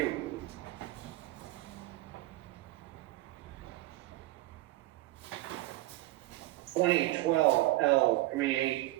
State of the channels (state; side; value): quieter; left; 18.0 dB